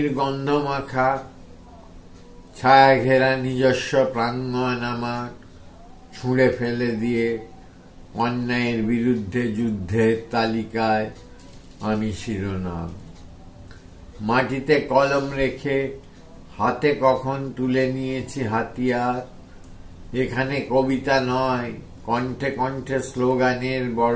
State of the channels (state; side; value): identical; both; correlation 1.00